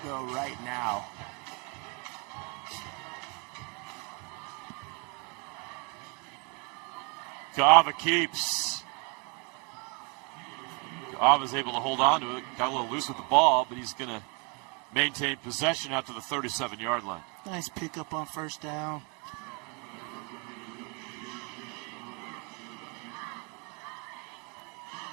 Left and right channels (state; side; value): quieter; left; 33.4 dB